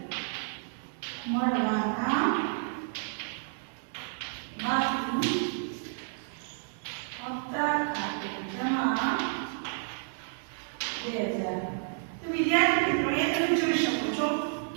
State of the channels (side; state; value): left; silent; 57 dB below the other